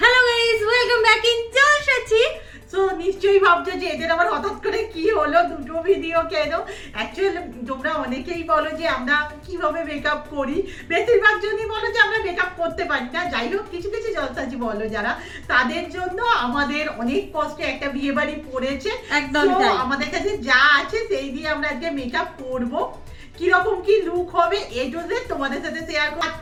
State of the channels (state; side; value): identical; both; correlation 1.00